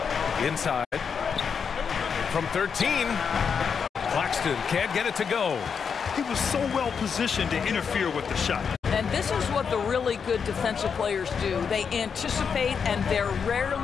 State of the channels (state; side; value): quieter; right; 6.4 dB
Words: Inside. From 13. Claxton can't get it to go. He was so well positioned to interfere with the shot. And this is what the really good defensive players do. They anticipate and they're